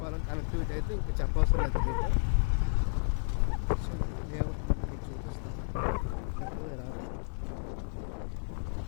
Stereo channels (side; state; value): right; silent; digital silence